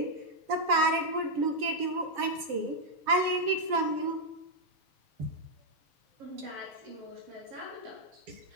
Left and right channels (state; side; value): late; left; 7.3 ms